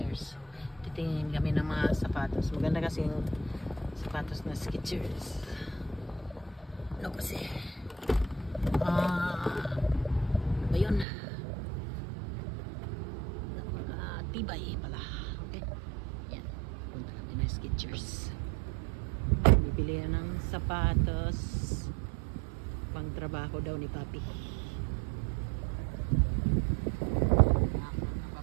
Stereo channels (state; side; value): drops out; left; at 11.1 s